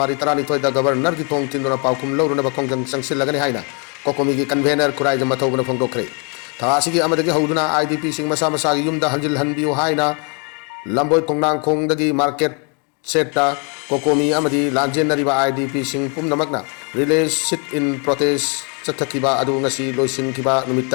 32 da governor gi thong tinduna paukum law na ba kongjang sangsilagani haina. Kokomigi convener kurai jama thawbana phongdok kre. Thasigi amadagi hauduna IDP sing masa masagi yumda hanjil hanbiu haina lamboi kongnang kongdagi market seta kokomi amadi lanjen nariba IDP sing pumnamakna relay sit in protest chathakiba adu ngasi loisin kiba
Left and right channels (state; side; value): quieter; right; 36.0 dB